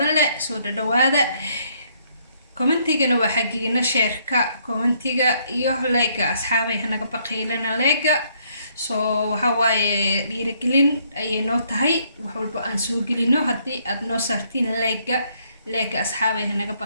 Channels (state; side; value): inverted; both; correlation -0.69